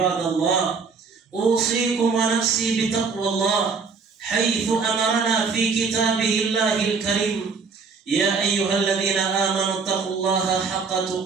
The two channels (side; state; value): left; quieter; 5.0 dB